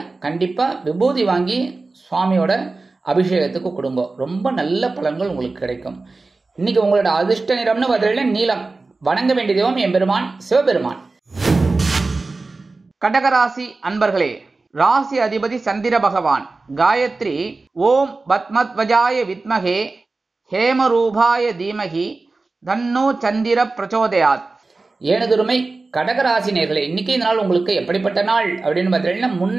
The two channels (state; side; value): quieter; left; 3.6 dB